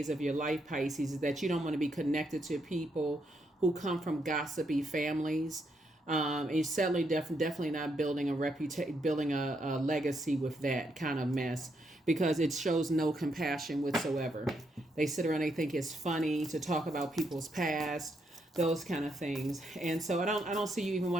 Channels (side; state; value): both; normal; correlation 0.78